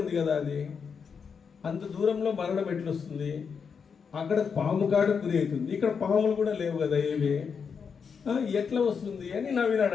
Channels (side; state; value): right; quieter; 6.2 dB